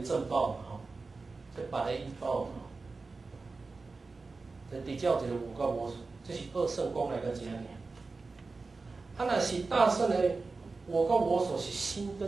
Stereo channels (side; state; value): left; quieter; 3.9 dB